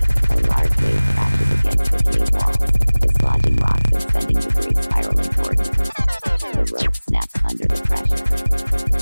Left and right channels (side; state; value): both; inverted; correlation -1.00